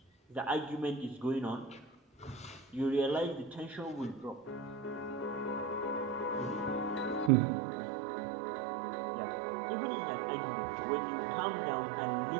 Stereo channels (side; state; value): left; drops out; at 7.3 s